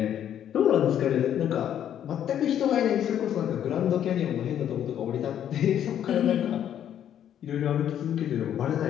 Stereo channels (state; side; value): quieter; right; 10.1 dB